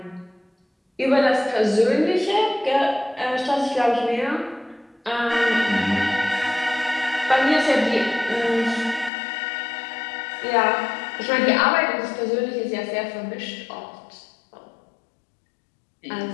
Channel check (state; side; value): drops out; right; at 9.1 s